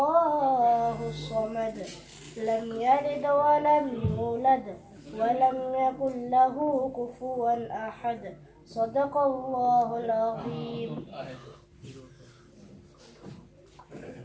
الصمد لم يلد ولم يولد ولم يكن له كفوا أحد صدق الله العظيم.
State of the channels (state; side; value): identical; both; correlation 1.00